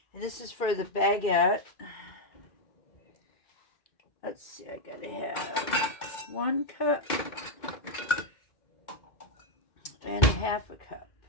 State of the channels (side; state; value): right; late; 2.2 ms